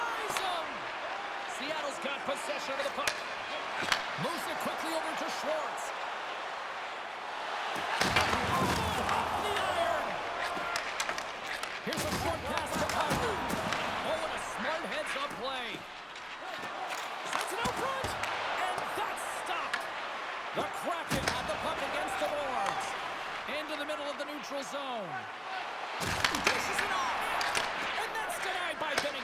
him! Seattle's got possession of the puck. Moves it quickly over to Schwartz. Oh, off the iron! Here's a short pass to Kyrou. Oh, and a smart heads-up play. Sends it out front, and that's stopped. The Kraken had the puck against the boards. Into the middle of the neutral zone. Dishes it off, and that's denied by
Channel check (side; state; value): both; identical; correlation 1.00